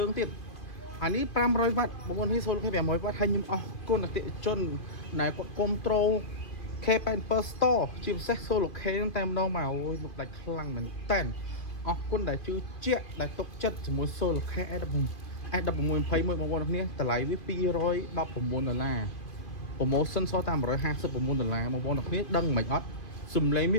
ងទៀតអានេះ500វ៉ាត់បងប្អូននេះ Solar Care 500វ៉ាត់ហើយខ្ញុំអរគុណអតិថិជនដែលគាត់គ្រប់ត្រូល K87 Store ជាពិសេស Solar Care តែម្ដងមកអូយលោកដាច់ខ្លាំងមែនតើអរគុណដែលជឿជាក់ដែលទុកចិត្តជាមួយ Solar Care S1621 បងប្អូនគ្នាតម្លៃវា$219 promotion សល់តែ$159បងប្អូនគ្នាដឹងមិនអត់សំឡេងវា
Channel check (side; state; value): right; late; 2.4 ms